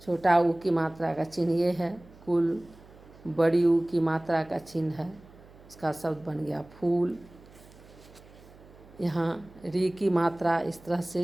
छोटा ऊ की मात्रा का चिन्ह ये है। कुल, बड़ी ऊ की मात्रा का चिन्ह है, इसका शब्द बन गया फूल। यहाँ री की मात्रा इस तरह से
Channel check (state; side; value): noise; right; hum, 23 dB below the sound